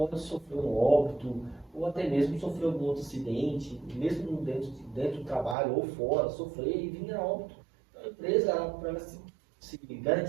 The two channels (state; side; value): drops out; left; at 5.6 s